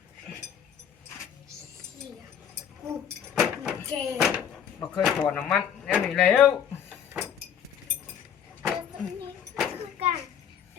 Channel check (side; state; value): right; quieter; 8.5 dB